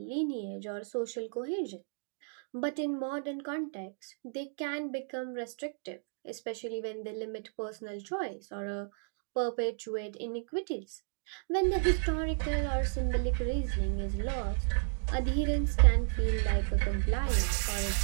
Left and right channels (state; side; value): silent; left; digital silence